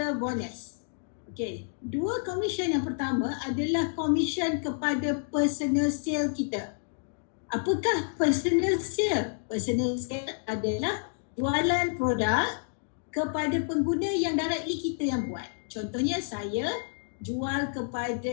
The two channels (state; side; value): silent; right; digital silence